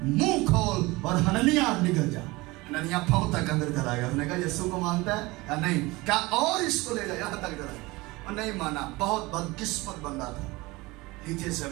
मुंह खोल और हननिया निकल जा। हननिया पांव तक अंदर चला गया। उसने कहा यीशु को मानता है या नहीं? क्या और इसको ले जा, यहाँ तक चला गया और नहीं माना। बहुत बदकिस्मत बंदा था, नीचे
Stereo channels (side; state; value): left; quieter; 22.1 dB